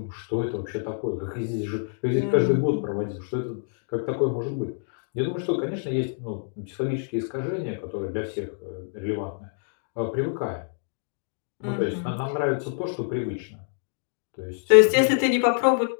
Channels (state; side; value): silent; right; digital silence